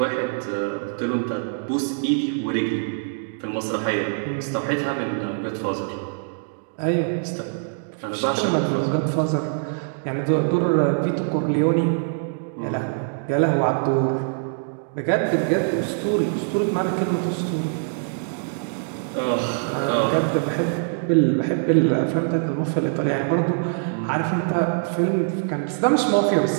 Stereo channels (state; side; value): silent; left; digital silence